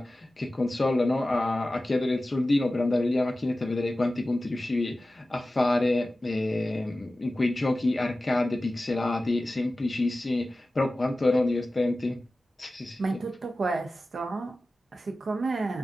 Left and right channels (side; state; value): both; normal; correlation 0.95